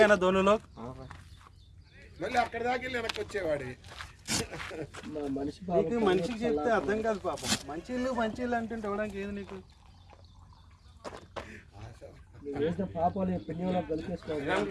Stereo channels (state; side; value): identical; both; correlation 1.00